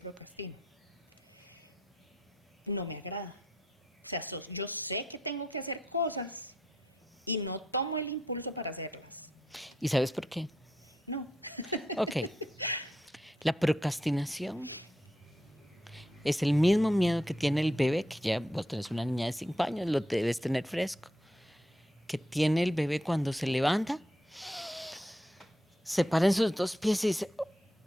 No me agrada. O sea, yo sé que tengo que hacer cosas y no tomo el impulso para hacerlas. ¿Y sabes por qué? No. Ok. La procrastinación es el mismo miedo que tiene el bebé, que ya vos tenés una niña de 5 años, lo debes tener fresco, que tiene el bebé cuando se levanta, se para en sus 2 pies y dice,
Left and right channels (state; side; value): normal; both; correlation 0.79